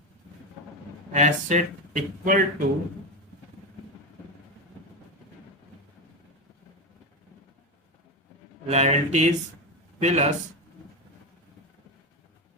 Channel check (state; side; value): normal; both; correlation 0.15